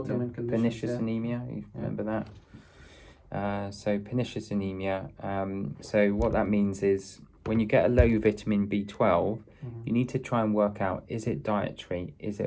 Pernicious anemia. You remember that? So pernicious anemia. So what that means is when you get a low vitamin B12, you need to try and work out, is it dietary? Is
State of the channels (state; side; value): identical; both; correlation 1.00